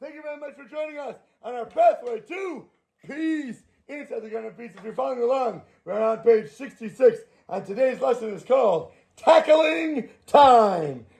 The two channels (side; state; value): both; identical; correlation 1.00